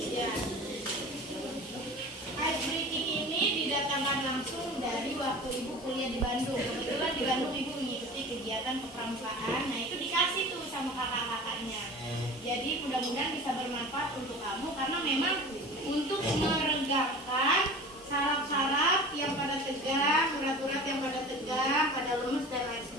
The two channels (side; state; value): both; normal; correlation 0.38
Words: Ya. Ice breaking ini didatangkan langsung dari waktu Ibu kuliah di Bandung. Kebetulan di Bandung Ibu mengikuti kegiatan kepramukaan. Nah, itu dikasih tuh sama kakak-kakaknya. Jadi mudah-mudahan bisa bermanfaat untuk kamu karena memang untuk meregangkan saraf-saraf yang pada tegang, urat-urat yang pada tegang, pada lemes dan lain